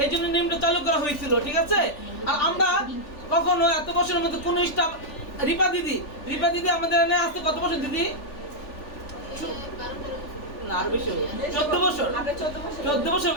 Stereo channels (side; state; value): right; late; 3.4 ms